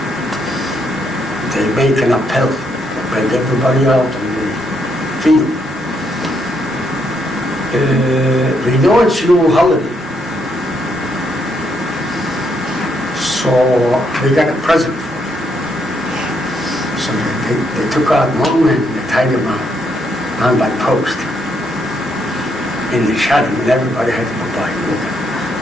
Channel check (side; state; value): both; normal; correlation 0.75